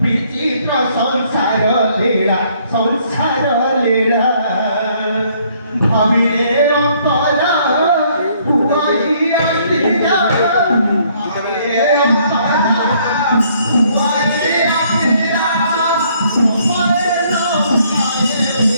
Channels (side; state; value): both; inverted; correlation -0.65